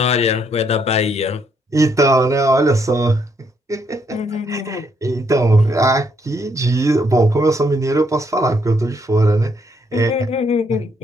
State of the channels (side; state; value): both; normal; correlation 0.73